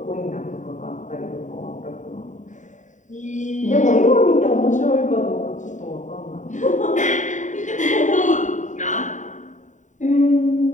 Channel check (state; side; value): late; right; 0.36 ms